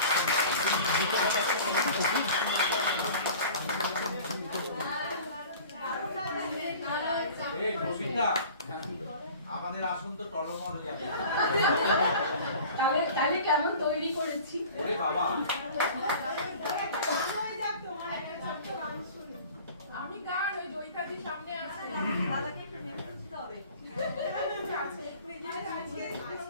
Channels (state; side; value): inverted; both; correlation -0.43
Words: এই বসিন্দা, আমাদের আসন তো টলমল হয়ে যাবে। তাহলে কেমন তৈরি করেছি? ওরে বাবা, আমি গান ওই জয়িতাদির সামনে আছে।